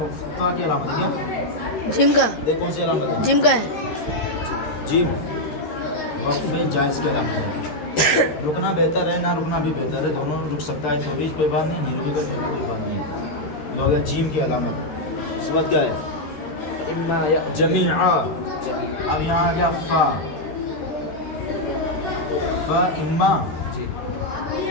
کی علامت ہے کیا؟ جیم کا. دیکھ کون سی علامت ہے؟ جیم کا ہے. جیم وقف جائز کی علامت ہے. رکنا بہتر ہے، نہ رکنا بھی بہتر ہے. دونوں رک سکتا ہے تو بھی کوئی بات نہیں، نہیں رکے گا کوئی بات نہیں. یہ ہو گیا جیم کی علامت. اس کے بعد کیا ہے؟ جمیعا. اب یہاں آ گیا فا. فا اما.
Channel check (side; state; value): right; late; 13 ms